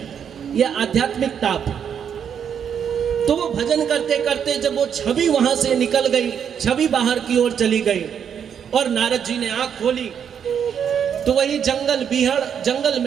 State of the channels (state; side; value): quieter; left; 8.0 dB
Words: ये आध्यात्मिक ताप। तो वो भजन करते करते जब वो छवि वहां से निकल गई, छवि बाहर की ओर चली गई और नारद जी ने आंख खोली तो वही जंगल बीहड़, जंगल